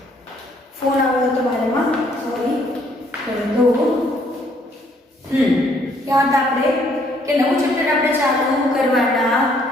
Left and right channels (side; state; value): both; normal; correlation 0.65